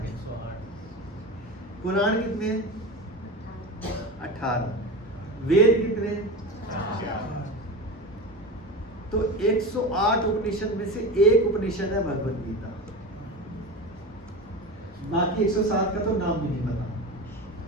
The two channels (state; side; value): normal; both; correlation 0.26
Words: पुराण कितने हैं? 18। वेद कितने हैं? 4। तो 108 उपनिषद में से एक उपनिषद है भगवत गीता, बाकी 107 का तो नाम भी नहीं पता,